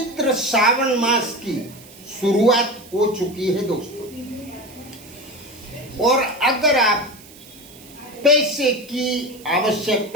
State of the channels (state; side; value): noise; right; hiss, 21 dB below the sound